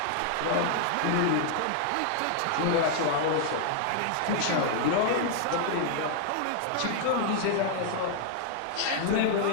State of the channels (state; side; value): different; both; correlation 0.00